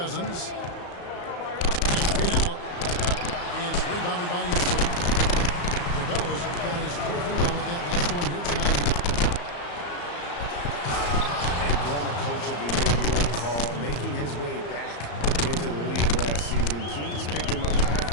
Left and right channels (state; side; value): late; right; 34 ms